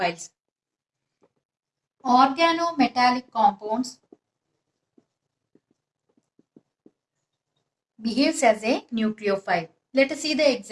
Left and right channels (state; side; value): identical; both; correlation 1.00